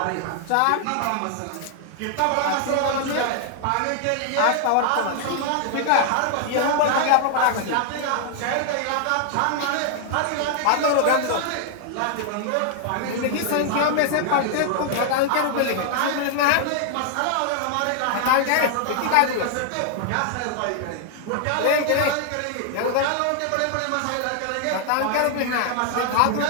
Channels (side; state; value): both; different; correlation 0.00